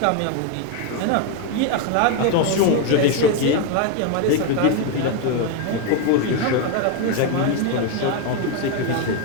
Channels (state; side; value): different; both; correlation 0.02